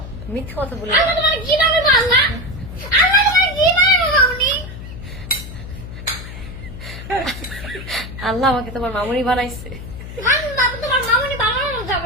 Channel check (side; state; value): left; noise; hum, 11 dB below the sound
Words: মিথ্যা কথা বলি আল্লাহ তোমার কি নামে বাংলা? আল্লাহ তোমার কি নামে বাংলা? আল্লাহ আমাকে তোমার মামুনি বানাইছে। বাবা তোমার মামুনি বানানো